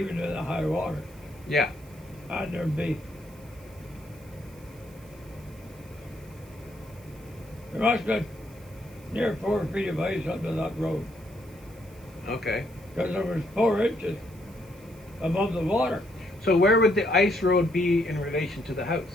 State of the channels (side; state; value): right; noise; hiss, 25 dB below the sound